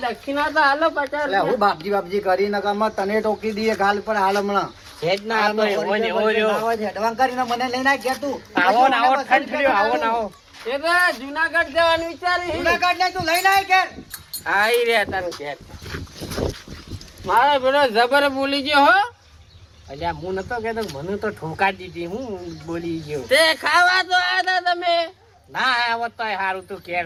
તો હાલો 50 એટલે હું બાપજી કરી નકામાં તને ટોકી દઈએ ગાલ પર હાલ હમણાં હેડ ના આ તો એવો ને એવો રહ્યો. હેડવાન કરીને મને લઈને આ ઘેર તું આવો ને આવો ઠંડ થયો આવો ને આવો એ તો જુનાગઢ જવાનું વિચારી જુનાગઢ ને તું લઈને આય ઘેર આઈ રે તને ઘેર મારો પેલો જબર બોલી ગયો હો અલ્યા હું નતો કહેતો મને તો ઠોકા દીધી હું બોલી ગયો તે ખાવા તો આવ્યા તમે ના આવત તો સારું તું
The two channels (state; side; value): identical; both; correlation 1.00